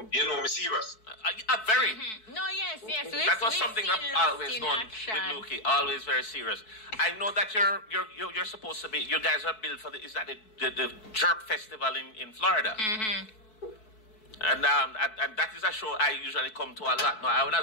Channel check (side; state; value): right; late; 4.6 ms